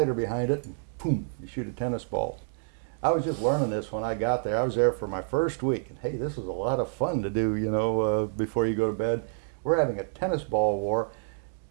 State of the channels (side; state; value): left; silent; digital silence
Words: behind it, and boom, you shoot a tennis ball. I was just learning this when I got there. I was there for my first week, and hey, this was a lot of fun to do, you know, before you go to bed. We're having a tennis ball war,